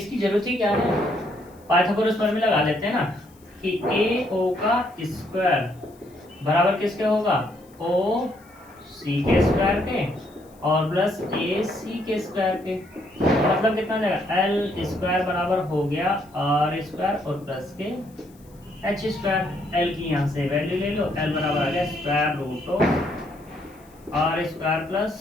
की जरूरत ही क्या है, पाइथागोरस प्रमेय लगा लेते हैं ना कि ए ओ का स्क्वायर बराबर किसके होगा, ओ सी के स्क्वायर के और प्लस ए सी के स्क्वायर के, मतलब कितना जाएगा, एल स्क्वायर बराबर हो गया आर स्क्वायर और प्लस के एच स्क्वायर। एल की यहाँ से वैल्यू ले लो, एल बराबर आ गया square root of R square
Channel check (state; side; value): noise; left; hiss, 30 dB below the sound